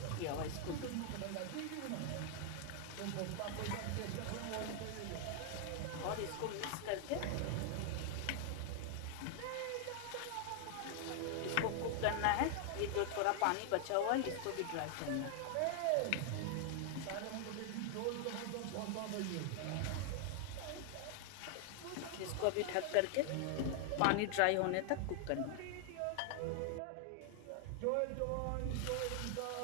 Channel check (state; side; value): different; both; correlation 0.00